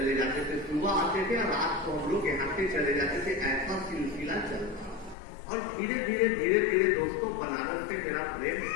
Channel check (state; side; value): drops out; right; at 5.2 s